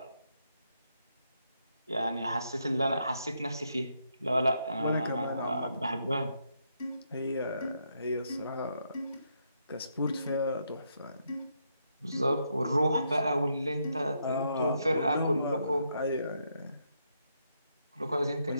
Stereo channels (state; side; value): inverted; both; correlation -0.78